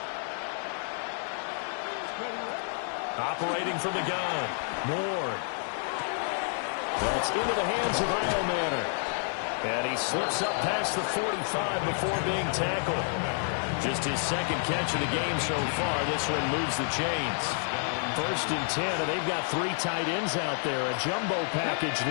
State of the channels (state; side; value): silent; right; 57 dB below the other